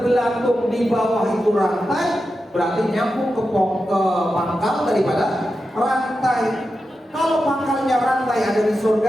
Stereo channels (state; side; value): normal; both; correlation 0.90